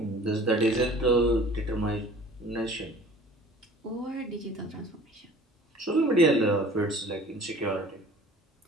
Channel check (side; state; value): both; normal; correlation 0.47